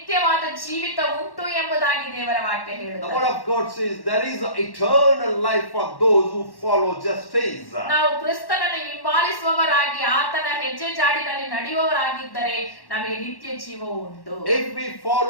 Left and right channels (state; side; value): late; right; 1.1 ms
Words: ಜೀವಿತ ಉಂಟು ಎಂಬುದಾಗಿ ದೇವರ ವಾಕ್ಯ The ಹೇಳುತ್ತದೆ. word of God says, there is an eternal life for those who follow justice. ನಾವು ಕ್ರಿಸ್ತನನ್ನು ಹಿಂಬಾಲಿಸುವವರಾಗಿ ಆತನ ಹೆಜ್ಜೆ ಜಾಡಿನಲ್ಲಿ ನಡೆಯುವವರಾಗಿದ್ದರೆ ನಮಗೆ ನಿತ್ಯ ಜೀವ ಉಂಟು. If we